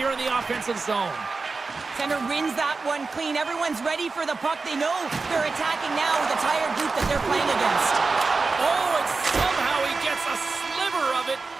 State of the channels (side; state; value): left; quieter; 4.1 dB